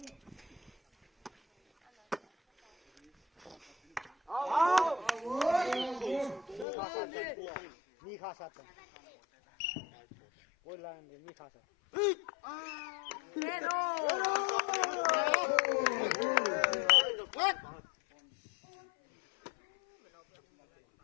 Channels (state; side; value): drops out; right; at 6.7 s